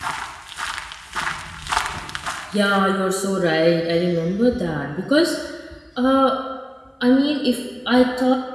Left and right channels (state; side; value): identical; both; correlation 1.00